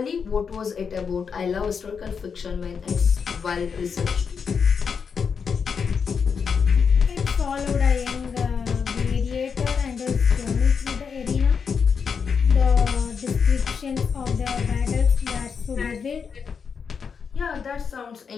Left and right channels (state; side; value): quieter; right; 6.2 dB